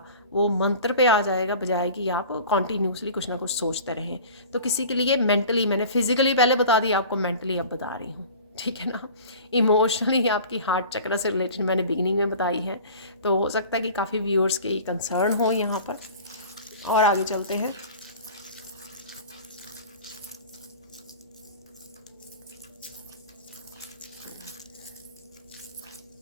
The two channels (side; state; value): both; inverted; correlation -0.40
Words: वो मंत्र पे आ जाएगा, बजाय कि आप कॉन्टीन्यूसली कुछ ना कुछ सोचते रहें। तो किसी के लिए मेंटली, मैंने फिजिकली पहले बता दिया, आपको मेंटली अब बता रही हूँ, ठीक है ना। इमोशनली आपकी हार्ट चक्र से रिलेटेड मैंने बिगिनिंग में बताई है, तो हो सकता है कि काफ़ी व्यूअर्स के कंसर्न हो यहाँ पर। और आगे चलते हैं।